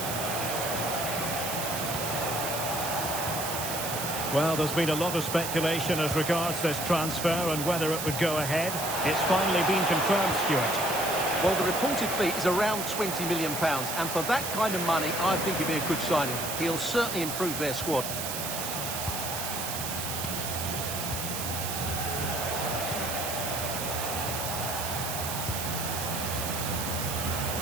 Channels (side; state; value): right; noise; hiss, 4 dB below the sound